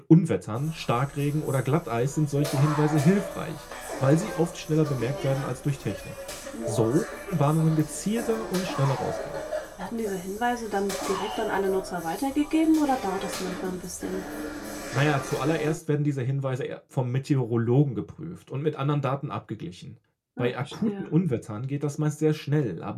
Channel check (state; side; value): identical; both; correlation 1.00